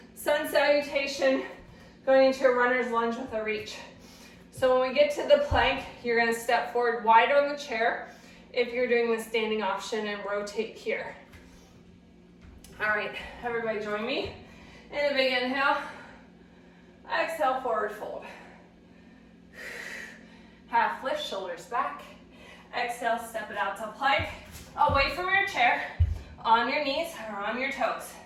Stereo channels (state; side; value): identical; both; correlation 1.00